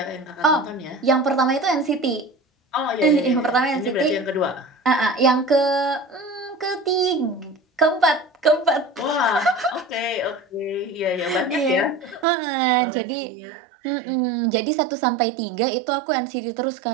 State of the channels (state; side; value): drops out; left; at 12.2 s